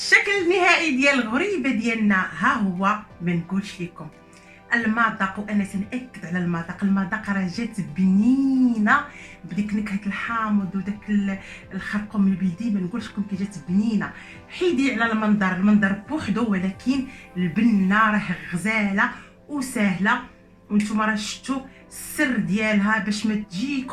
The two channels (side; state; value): both; identical; correlation 1.00